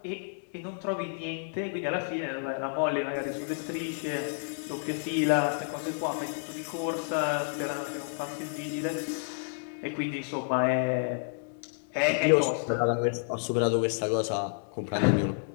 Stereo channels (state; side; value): silent; right; digital silence